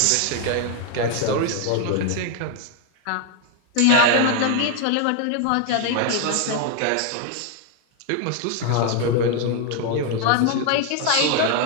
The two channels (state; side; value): different; both; correlation 0.01